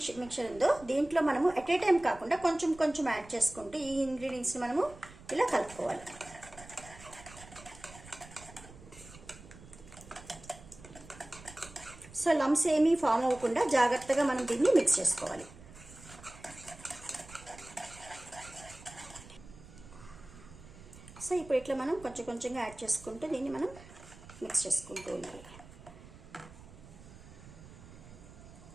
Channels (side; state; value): right; noise; rumble, 19 dB below the sound